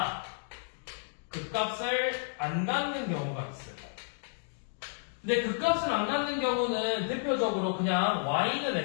극값을 안 갖는 경우가 있어요. 근데 극값을 안 갖는 경우는 대표적으로 그냥 y는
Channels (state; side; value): silent; right; digital silence